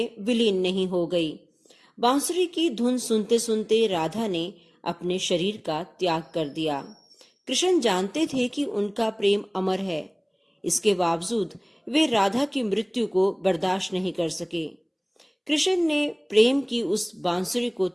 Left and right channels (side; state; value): both; identical; correlation 1.00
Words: विलीन नहीं हो गई। बांसुरी की धुन सुनते सुनते राधा ने अपने शरीर का त्याग कर दिया। कृष्ण जानते थे कि उनका प्रेम अमर है। इसके बावजूद वे राधा की मृत्यु को बर्दाश्त नहीं कर सके। कृष्ण ने प्रेम की उस बांसुरी को